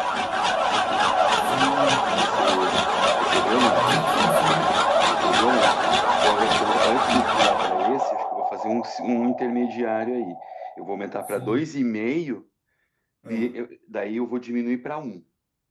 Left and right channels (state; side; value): identical; both; correlation 1.00